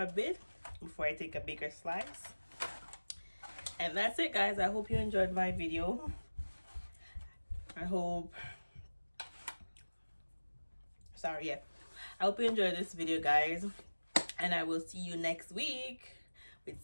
a bit before I take a bigger slice. And that's it, guys. I hope you enjoyed my video. I hope you enjoyed this video, guys, and I will see you next week with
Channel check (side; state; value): both; inverted; correlation -1.00